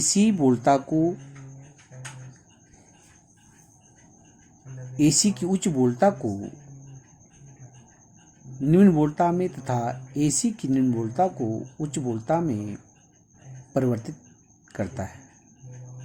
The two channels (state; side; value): identical; both; correlation 1.00